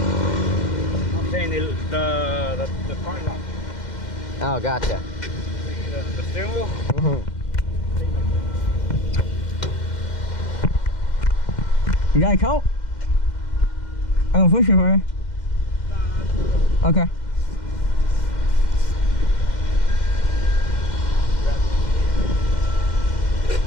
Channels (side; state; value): right; late; 2.1 ms